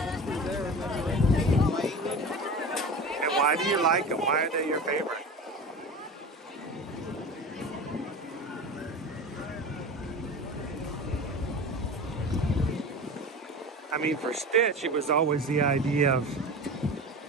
why do you like them? Why are they your favorite? I mean, for Stitch, it was always the idea of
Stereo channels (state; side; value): normal; both; correlation 0.32